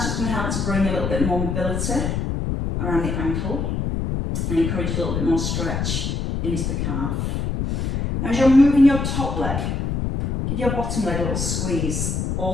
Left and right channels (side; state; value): left; noise; rumble, 1 dB below the sound